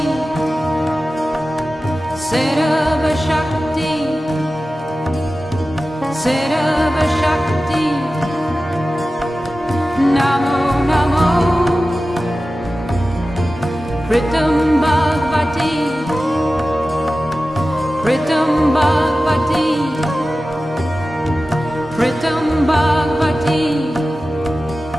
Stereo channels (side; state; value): both; normal; correlation 0.95